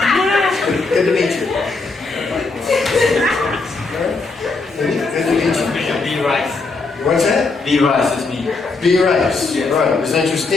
Good to meet you. Good to meet you. B Rice. What's that? B Rice is me. B. Rice. Yes. Right. Is that your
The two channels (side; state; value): right; quieter; 3.9 dB